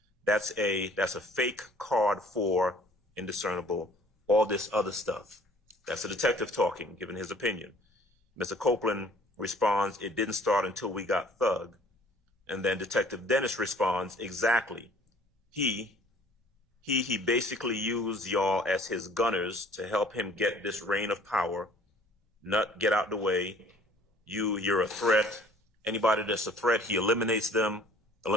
That's a fake card for indiscernible, all this other stuff. That's the detective talking, giving his opinion. Mr. Copeland responds, it didn't start until we got Thug. And then Detective Dennis responds, exactly. He basically used y'all as his gunners to help him get this reign of power. Nut, get out the way. You're a threat. Anybody that's a threat, he eliminates them.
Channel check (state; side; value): normal; both; correlation 0.54